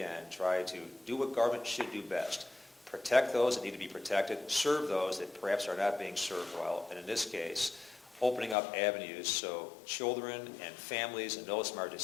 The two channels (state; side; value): drops out; right; at 8.6 s